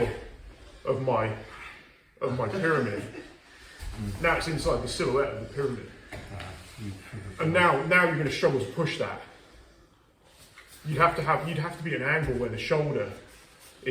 of my pyramid, now it's inside the silhouette of the pyramid. And now you're going to struggle to push that. You'd have to be at an angle where the shoulder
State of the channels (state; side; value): identical; both; correlation 1.00